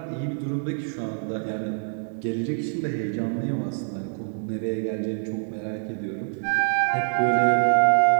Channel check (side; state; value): left; silent; digital silence